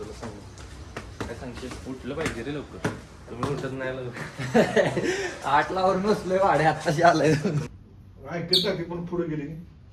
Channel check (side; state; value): both; identical; correlation 1.00